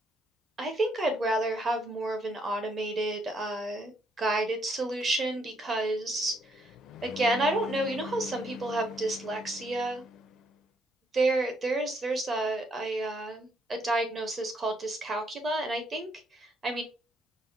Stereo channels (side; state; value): both; normal; correlation 0.72